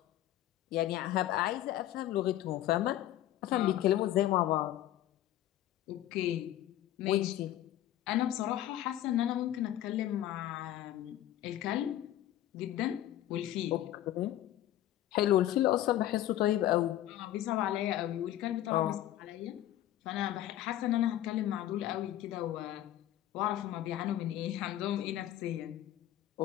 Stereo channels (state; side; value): quieter; right; 13.1 dB